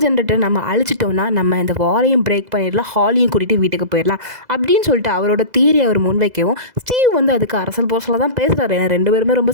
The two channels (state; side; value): late; left; 2.0 ms